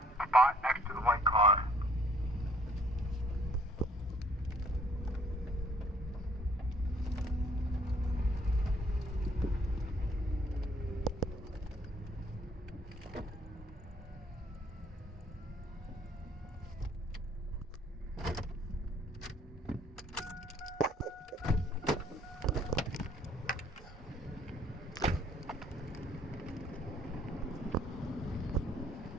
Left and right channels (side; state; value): both; normal; correlation 0.59